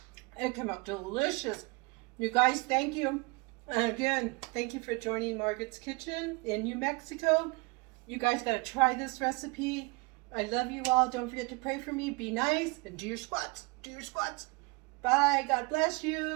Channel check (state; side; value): quieter; left; 27.9 dB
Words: It came out delicious. You guys, thank you. And again, thank you for joining Margaret's Kitchen in New Mexico. You guys got to try this recipe. I love you all. Don't forget to pray for me. Be nice and do your squats. Do your squats. Bye. God bless